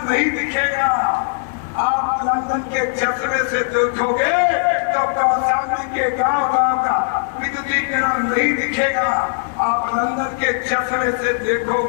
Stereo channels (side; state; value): right; silent; digital silence